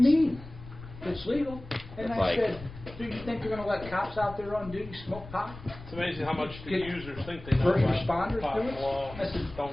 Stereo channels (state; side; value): noise; left; rumble, 15 dB below the sound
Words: mean? It's legal. And That's I like- said, do you think they're going to let cops out there on duty smoke pot? It's amazing how much the Get users think they know First about responders pot do it? law. I said, Don't